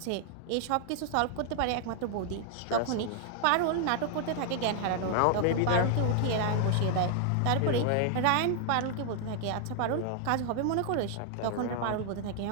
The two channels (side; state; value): both; different; correlation 0.00